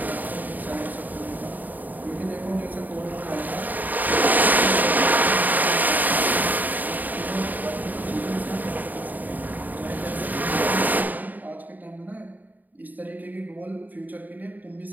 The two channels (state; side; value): late; left; 0.084 ms